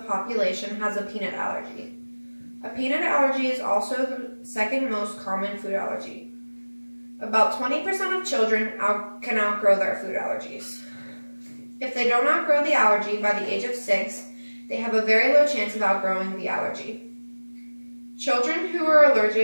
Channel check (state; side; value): inverted; both; correlation -1.00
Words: has a peanut allergy. A peanut allergy is also the second most common food allergy. About 20% of children can outgrow their food allergies. If they don't outgrow the allergy by the age of 6, they have a very low chance of outgrowing the allergy. Children who are